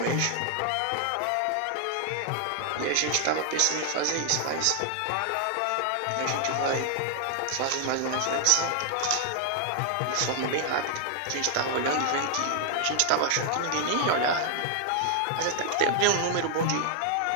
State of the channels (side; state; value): both; different; correlation 0.00